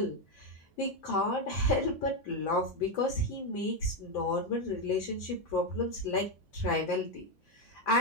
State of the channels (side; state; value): both; normal; correlation 0.07